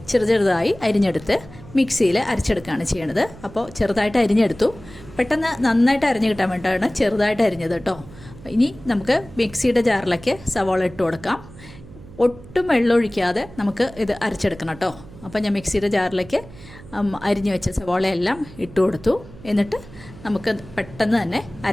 ചെറുതായി അരിഞ്ഞെടുത്ത് മിക്സിയിൽ അരച്ചെടുക്കുകയാണ് ചെയ്യണത്. അപ്പോൾ ചെറുതായിട്ട് അരിഞ്ഞെടുത്തു. പെട്ടെന്ന് നന്നായിട്ട് അരിഞ്ഞ് കിട്ടാൻ വേണ്ടിയിട്ടാണ് ചെറുതായിട്ട് അരിഞ്ഞത് കേട്ടോ. ഇനി നമുക്ക് മിക്സിയുടെ ജാറിലേക്ക് സവാള ഇട്ട് കൊടുക്കാം. ഒട്ടും വെള്ളം ഒഴിക്കാതെ നമുക്ക് ഇത് അരച്ചെടുക്കണം കേട്ടോ. അപ്പോൾ ഞാൻ മിക്സിയുടെ ജാറിലേക്ക് അരിഞ്ഞു വെച്ച സവാളയെല്ലാം ഇട്ട് കൊടുത്തു. എന്നിട്ട് നമുക്ക് പെട്ടെന്ന് തന്നെ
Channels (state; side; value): noise; right; hum, 19 dB below the sound